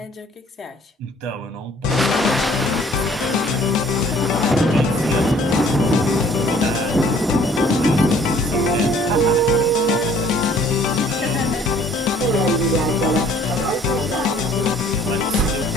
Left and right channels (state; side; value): normal; both; correlation 0.56